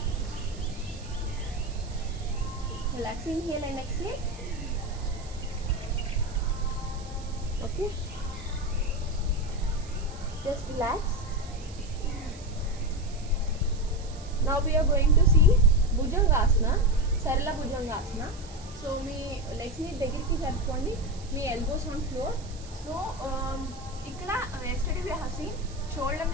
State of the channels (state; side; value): noise; right; hiss, 20 dB below the sound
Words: Relax, inhale and exhale. Okay, just relax. Now we are going to see Bhujangasana, Sarala Bhujangasana. So మీ legs ని దగ్గరికి జరుపుకోండి, మీ elbows on floor. So ఇక్కడ yesterday we have seen shoulder